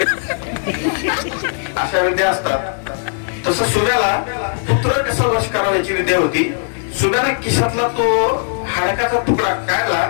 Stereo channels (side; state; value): right; silent; digital silence